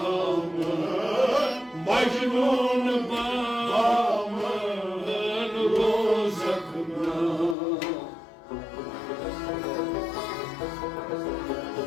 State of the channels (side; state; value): right; drops out; at 7.6 s